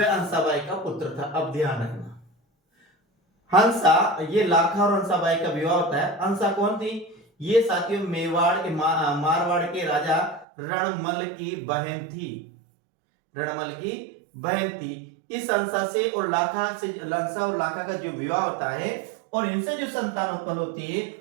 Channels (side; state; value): left; drops out; at 10.5 s